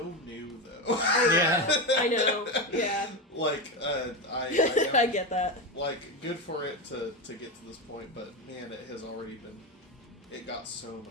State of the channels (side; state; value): both; normal; correlation 0.15